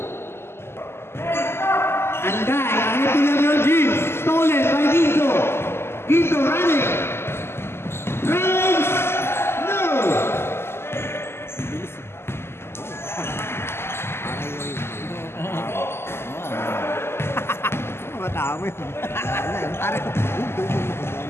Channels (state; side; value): late; right; 0.12 ms